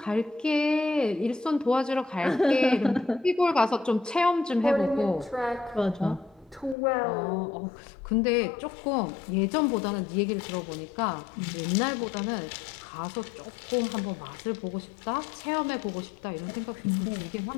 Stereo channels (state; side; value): drops out; right; at 6.8 s